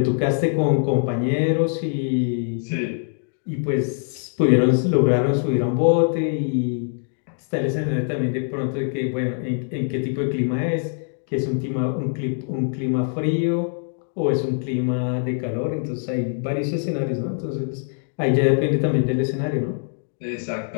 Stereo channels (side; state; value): right; silent; 63 dB below the other